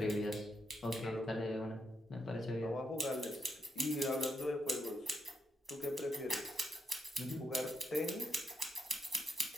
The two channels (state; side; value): normal; both; correlation 0.80